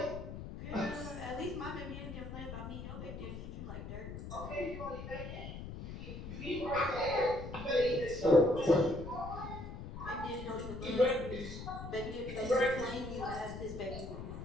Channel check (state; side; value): noise; left; rumble, 9 dB below the sound